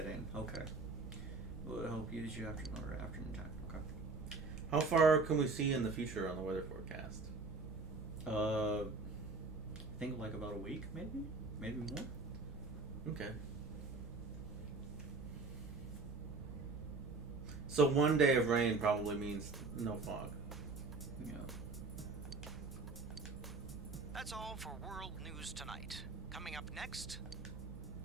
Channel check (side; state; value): left; quieter; 3.8 dB